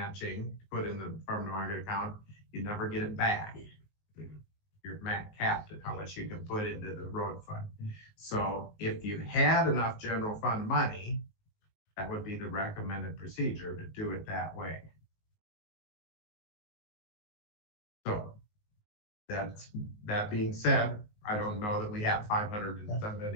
to put in the farm to market account, you never get it back. You're capped at how much you can put into the road fund. So if you had enough general fund money, that would be the recommended procedure to do it that way. So that being said, I don't know that we have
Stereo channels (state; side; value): late; right; 19 ms